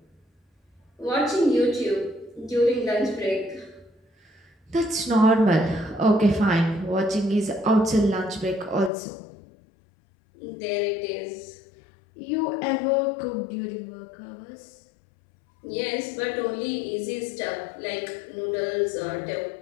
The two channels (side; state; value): right; drops out; at 8.9 s